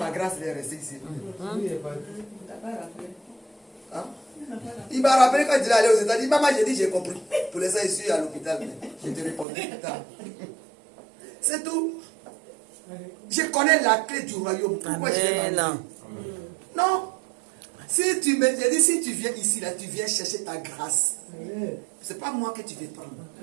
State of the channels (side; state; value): left; drops out; at 9.5 s